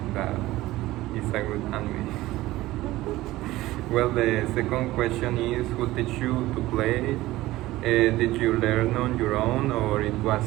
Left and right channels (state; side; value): quieter; left; 17.2 dB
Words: a good anime. Well, the second question is who teach you to play? Did you learn on your own or it